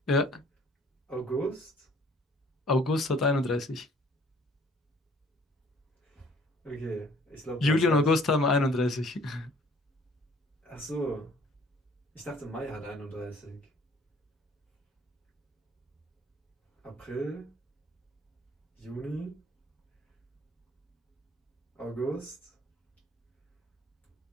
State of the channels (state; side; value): normal; both; correlation 0.56